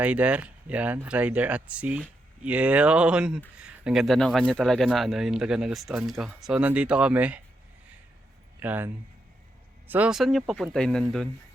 Yan, Rider at Sea. Yun. Ang ganda ng kanya talaga na ano, yung talaga nagustuhan ko. So nandito kami. Yan. So saan nyo papuntahin nandun?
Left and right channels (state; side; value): normal; both; correlation 0.82